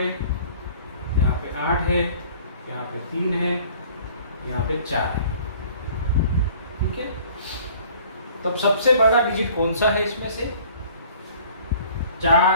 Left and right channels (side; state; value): both; inverted; correlation -0.52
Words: 8 है, यहाँ पे 3 है, यहाँ पे 4 है। ठीक है, तब सबसे बड़ा डिजिट कौन सा है इसमें से?